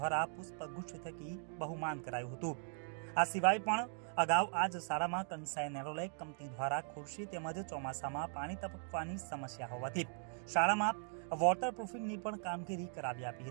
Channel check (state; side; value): silent; left; 51 dB below the other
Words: પુષ્પગુચ્છ થકી બહુમાન કરાયું હતું. આ સિવાય પણ અગાઉ આ જ શાળામાં કંસાઈ નેરોલેક કંપની દ્વારા ખુરશી તેમજ ચોમાસામાં પાણી ટપકવાની સમસ્યા હોવાથી શાળામાં વોટરપ્રૂફિંગની પણ કામગીરી કરાવી આપી